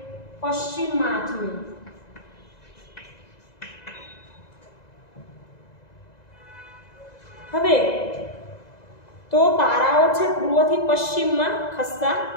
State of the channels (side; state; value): right; late; 2.0 ms